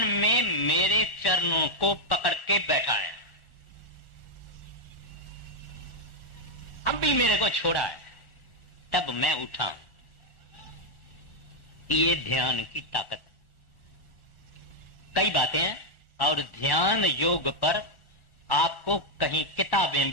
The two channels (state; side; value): late; right; 1.4 ms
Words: मेरे चरणों को पकड़ के बैठा है, अब भी मेरे को छोड़ा है, तब मैं उठा हूं। ये ध्यान की ताकत। कई बातें हैं और ध्यान योग पर आपको कहीं किताबें